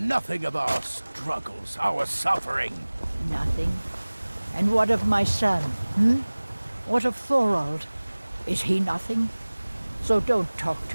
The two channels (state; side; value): inverted; both; correlation -1.00